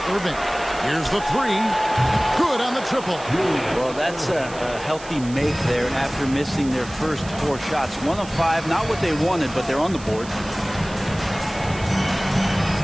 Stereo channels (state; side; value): noise; right; hiss, 17 dB below the sound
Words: Irving. Here's the three. Good on the triple. Well, that's a healthy make there after missing their first 4 shots. 1 of 5, not what they wanted, but they're on the board.